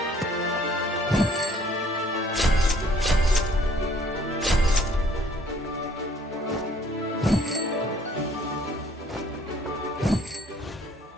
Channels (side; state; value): both; normal; correlation 0.59